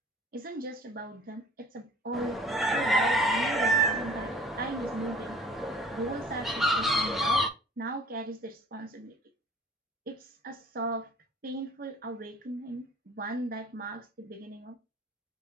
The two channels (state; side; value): normal; both; correlation 0.49